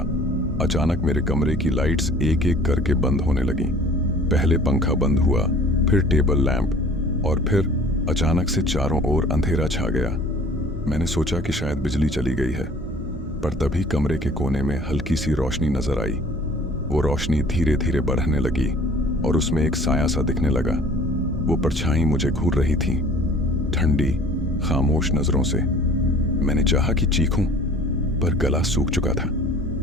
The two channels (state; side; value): normal; both; correlation 0.49